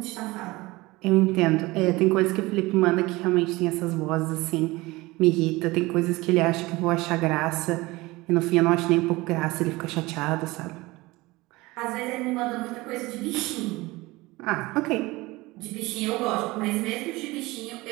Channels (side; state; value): left; quieter; 21.2 dB